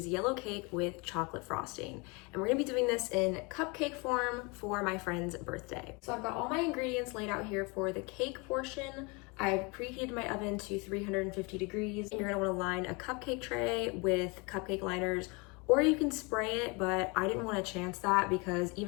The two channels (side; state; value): right; quieter; 29.0 dB